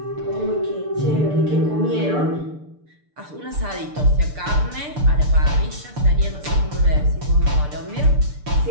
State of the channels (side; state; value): left; late; 6.8 ms